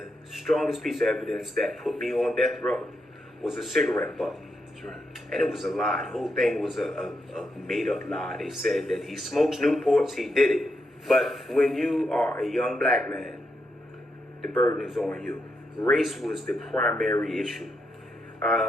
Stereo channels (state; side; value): normal; both; correlation 0.82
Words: strongest piece of evidence that put me on death row was a cigarette butt. That's right. And it was a lie. The whole thing was a made-up lie. They said that he smokes Newports, he did it. But when you are a young black man, the burden is on you. Race was the primary issue.